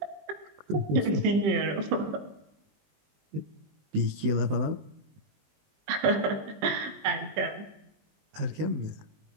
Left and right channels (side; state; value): left; late; 20 ms